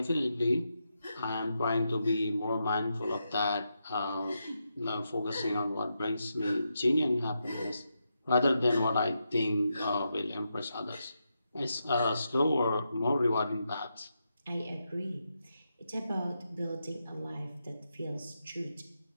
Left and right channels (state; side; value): inverted; both; correlation -0.85